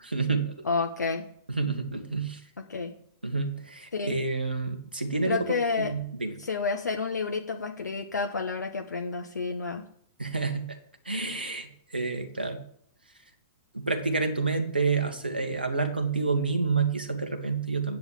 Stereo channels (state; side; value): inverted; both; correlation -0.58